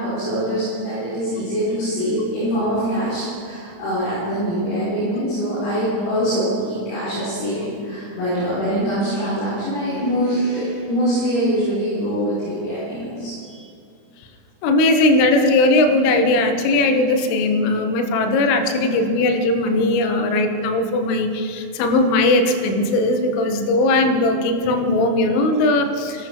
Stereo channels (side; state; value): right; late; 35 ms